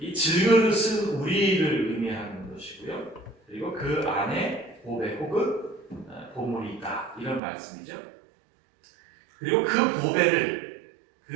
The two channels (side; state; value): left; drops out; at 7.4 s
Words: 질그릇은 우리를 의미하는 것이고요, 그리고 그 안에 보배 혹은 보물이 있다, 이런 말씀이죠. 그리고 그 보배를,